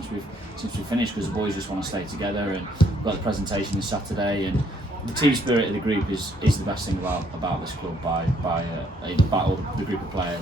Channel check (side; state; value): both; normal; correlation 0.67